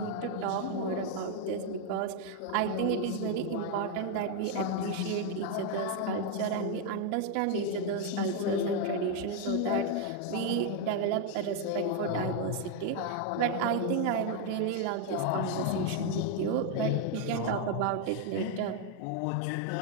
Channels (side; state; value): both; different; correlation 0.01